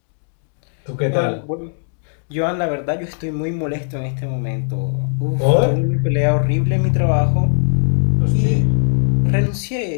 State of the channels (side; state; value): right; silent; digital silence